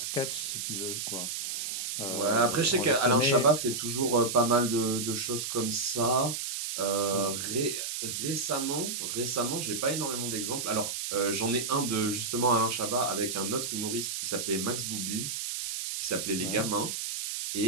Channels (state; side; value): noise; right; hiss, 4 dB below the sound